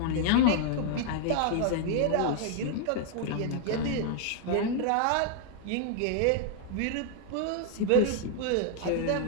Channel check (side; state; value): both; different; correlation 0.00